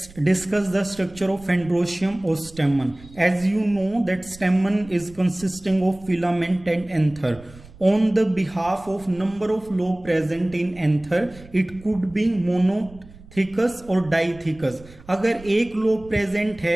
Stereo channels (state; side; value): noise; right; rumble, 21 dB below the sound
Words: discuss the structure of Androecium or stamen. As you know that stamen is consisting of filament and anther. On the behalf of number of lobe present in anther, it could be monothecous और डाइथिकस. अगर एक लोब प्रेजेंट